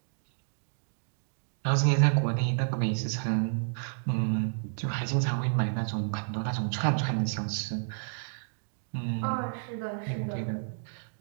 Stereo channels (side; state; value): left; silent; digital silence